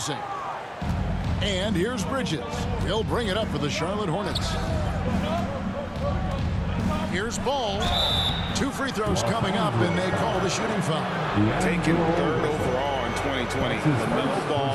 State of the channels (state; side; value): identical; both; correlation 1.00